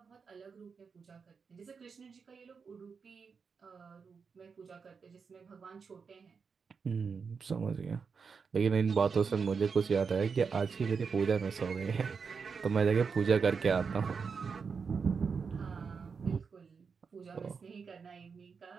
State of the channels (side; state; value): left; quieter; 5.6 dB